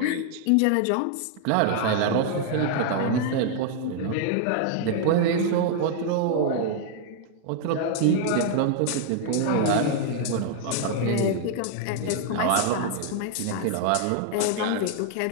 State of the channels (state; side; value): different; both; correlation 0.00